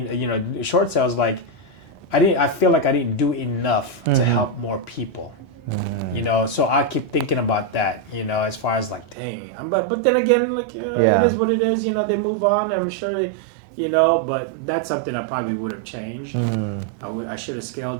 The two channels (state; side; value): drops out; left; at 9.2 s